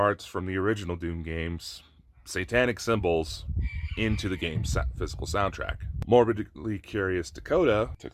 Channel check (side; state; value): both; identical; correlation 1.00